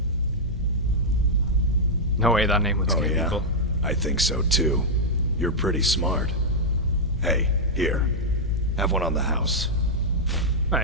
No way that name would scare yeah? people. I think so too. You're pretty smart. Hey, here. Have one on the house.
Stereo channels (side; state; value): both; normal; correlation -0.06